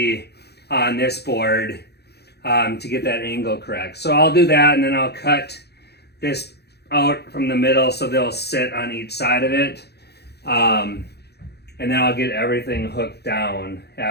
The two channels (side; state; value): right; late; 0.48 ms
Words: on this board to get that angle correct. So I'll do that, and then I'll cut this out from the middle so they'll sit on each side of it. And then I'll get everything hooked down